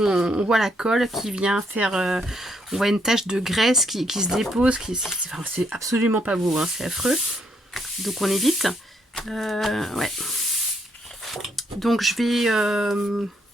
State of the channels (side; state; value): both; normal; correlation 0.73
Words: voit la colle qui vient faire... on voit une tache de graisse qui se dépose. C'est absolument pas beau, hein, c'est affreux. Donc on évite. Ouais. Donc je vais